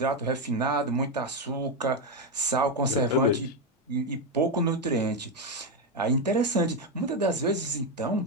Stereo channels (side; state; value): both; normal; correlation 0.07